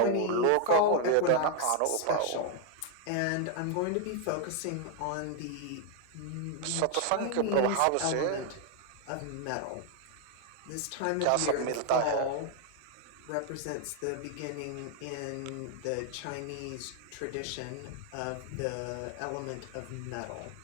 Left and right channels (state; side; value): different; both; correlation 0.00